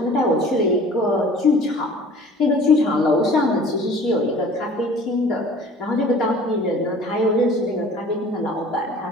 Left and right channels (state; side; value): normal; both; correlation 0.46